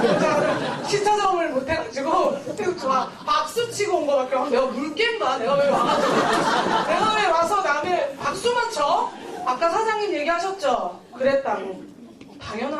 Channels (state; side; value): identical; both; correlation 1.00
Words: 시차 적응을 못해가지고. 계속 좋아. 박수 치고 온 거밖에 없어. 내가 물깬다. 내가 왜 와서 남의 박수만 쳐? 아까 사장님 얘기하셨죠? 그랬다고.